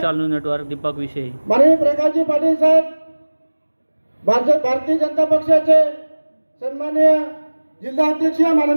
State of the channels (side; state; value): both; inverted; correlation -1.00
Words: न्यूज नेटवर्क दीपक विषयी। माननीय प्रकाशजी पाटील साहेब, भारतीय जनता पक्षाचे सन्माननीय जिल्हा अध्यक्ष